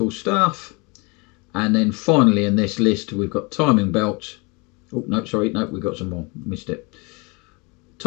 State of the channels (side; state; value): right; quieter; 29.1 dB